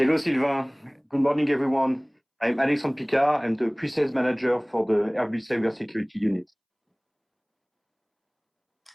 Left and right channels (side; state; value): both; identical; correlation 1.00